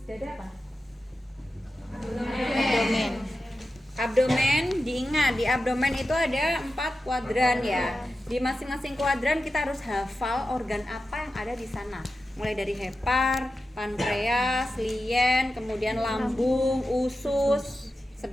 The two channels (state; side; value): normal; both; correlation 0.92